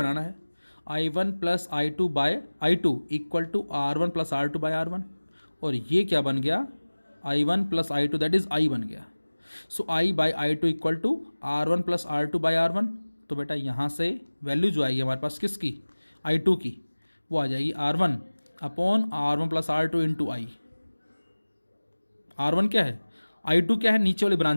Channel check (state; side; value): inverted; both; correlation -1.00